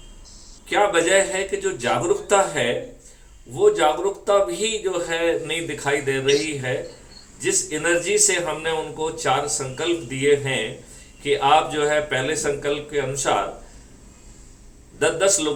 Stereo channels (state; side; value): identical; both; correlation 1.00